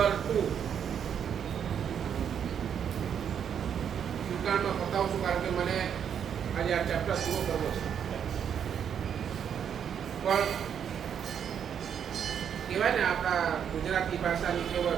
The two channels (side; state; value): left; quieter; 8.2 dB